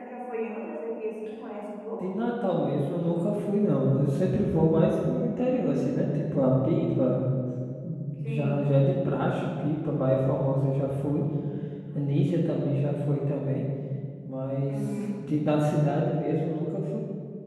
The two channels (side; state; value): both; identical; correlation 1.00